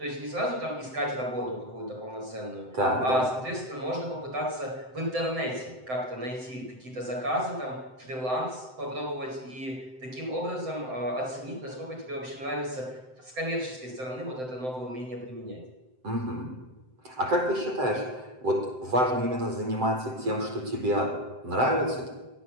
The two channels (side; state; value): left; late; 7.8 ms